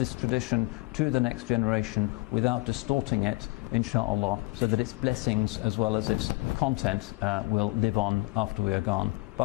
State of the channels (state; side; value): quieter; right; 24.8 dB